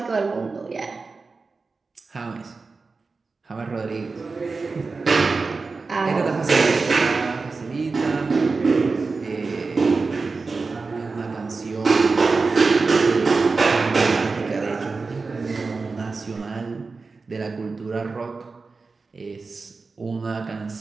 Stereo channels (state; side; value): quieter; left; 4.2 dB